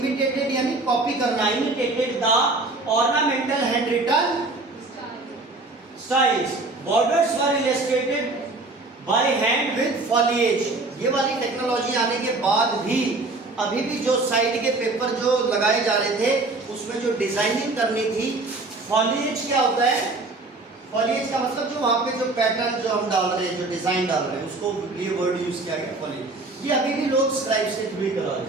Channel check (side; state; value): left; quieter; 3.2 dB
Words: यानी कॉपी करना, imitated the ornamental handwritten styles. Borders were illustrated by hand with foliage. ये वाली टेक्नोलॉजी आने के बाद भी अभी भी जो साइड के पेपर जो लगाए जा रहे थे, उसमें जो डिजाइनिंग करनी थी, फॉलिएज क्या होता है? फॉलिएज का मतलब जो वहाँ पे जो पैटर्न जो हम डाल रहे हैं, जो डिजाइन डाल रहे हैं, उसको ये वर्ड यूज किया गया, फॉलिएज। ये अभी भी लोग स्क्राइब्स के थ्रू करा रहे